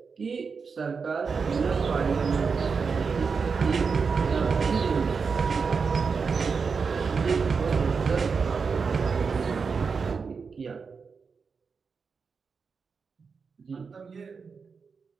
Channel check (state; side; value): quieter; left; 5.3 dB